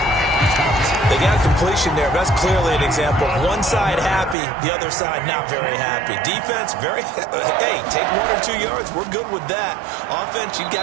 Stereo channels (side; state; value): left; drops out; at 4.4 s